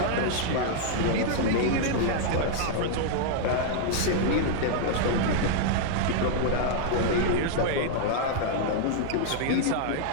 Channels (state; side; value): different; both; correlation -0.01